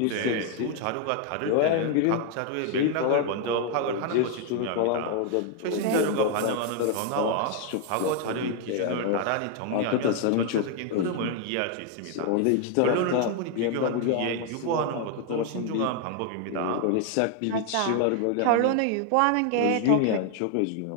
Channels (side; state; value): both; different; correlation 0.00